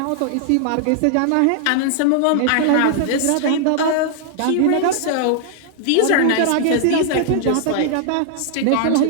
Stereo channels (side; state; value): both; different; correlation 0.00